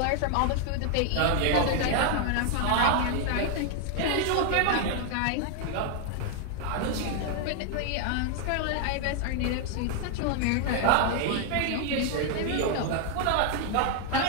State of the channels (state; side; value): different; both; correlation 0.00